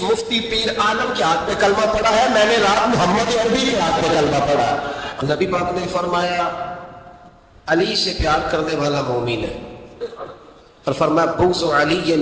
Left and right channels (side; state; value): both; identical; correlation 1.00